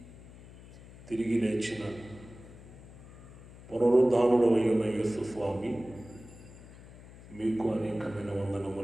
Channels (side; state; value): left; noise; hum, 19 dB below the sound